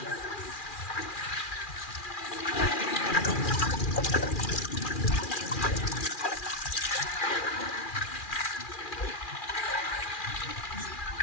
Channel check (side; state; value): right; late; 2.4 ms